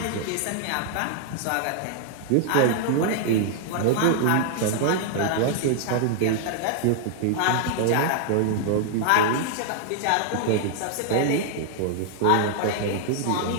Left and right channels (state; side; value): different; both; correlation -0.01